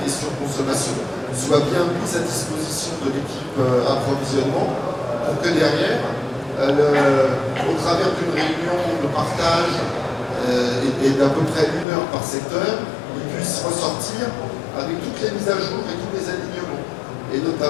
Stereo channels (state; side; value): drops out; right; at 11.9 s